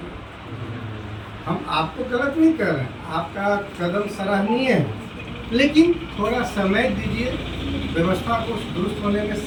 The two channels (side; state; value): both; identical; correlation 1.00